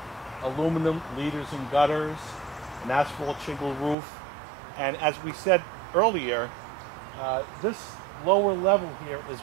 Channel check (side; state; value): left; drops out; at 4.0 s